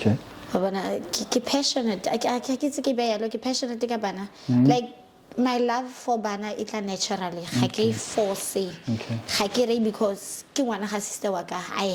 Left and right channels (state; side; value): identical; both; correlation 1.00